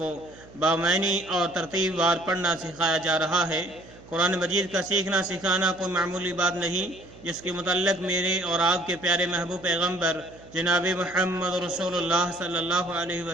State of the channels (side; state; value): right; noise; hum, 22 dB below the sound